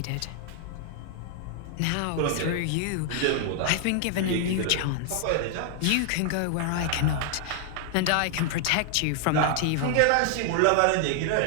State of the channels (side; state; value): both; different; correlation 0.00